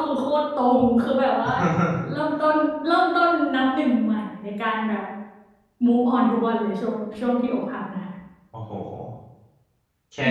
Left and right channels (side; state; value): both; identical; correlation 1.00